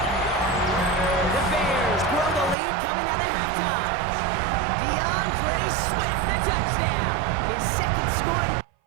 The Bears grow the lead coming out of halftime. DeAndre Swift, the touchdown. His 2nd scoring.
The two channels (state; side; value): drops out; left; at 2.6 s